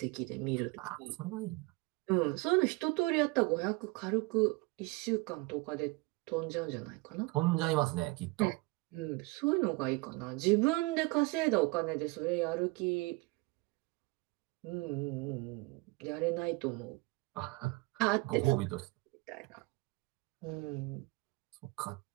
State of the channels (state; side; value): quieter; left; 24.9 dB